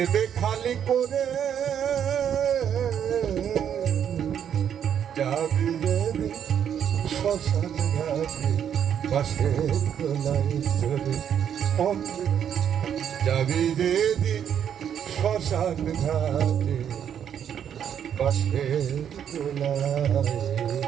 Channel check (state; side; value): quieter; left; 8.9 dB